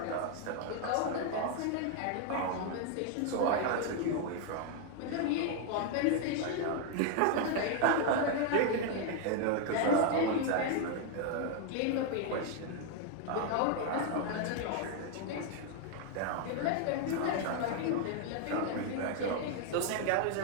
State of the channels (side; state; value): both; different; correlation 0.01